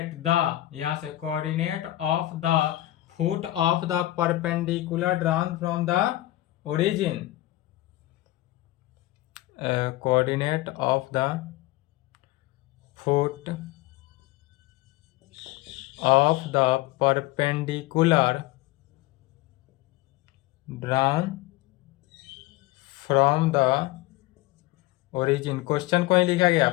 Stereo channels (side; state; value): right; quieter; 16.7 dB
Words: यहाँ से coordinate of the foot of the perpendicular drawn from the origin, coordinate of the foot of the perpendicular drawn from the origin. Question को ही लिखा गया